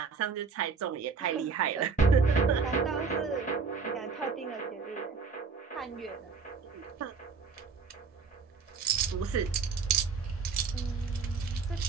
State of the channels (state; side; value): quieter; left; 5.1 dB